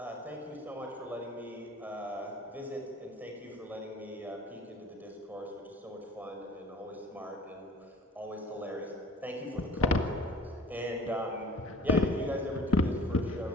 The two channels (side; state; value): both; normal; correlation 0.46